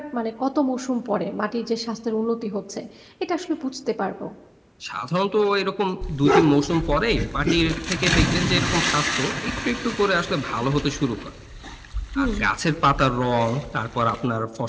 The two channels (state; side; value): identical; both; correlation 1.00